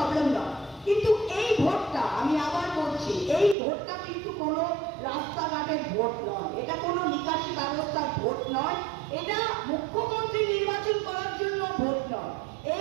নয়। কিন্তু এই ভোটটা আমি আবার বলছি, এই ভোটটা কিন্তু কোনো রাস্তাঘাটের ভোট নয়, এটা কোনো নিকাশি ব্যবস্থার ভোট নয়, এটা মুখ্যমন্ত্রী নির্বাচন করার জন্য ভোট নয়।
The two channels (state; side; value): drops out; left; at 3.6 s